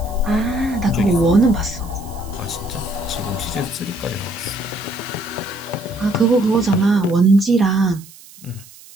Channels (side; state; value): right; noise; hiss, 21 dB below the sound